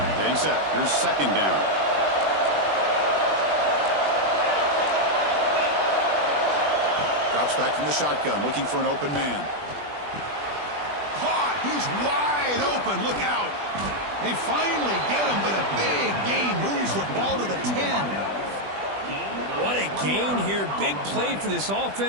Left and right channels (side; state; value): left; late; 20 ms